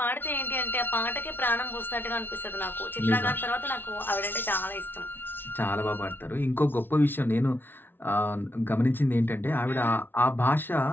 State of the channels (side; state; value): right; late; 0.099 ms